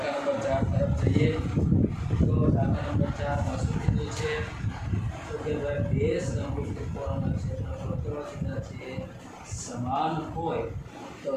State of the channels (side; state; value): both; identical; correlation 1.00